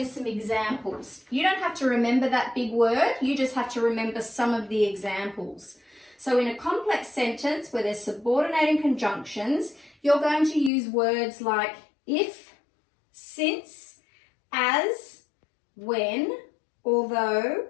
some examples. You don't have to remember that big word, you just have to remember some of the examples. So in a complex sentence where there's subordinating conjunctions, you're going to use words like if, since, as, when, although,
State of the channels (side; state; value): right; drops out; at 10.7 s